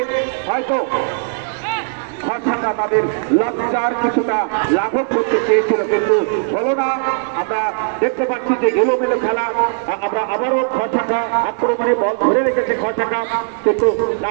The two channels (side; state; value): left; silent; 66 dB below the other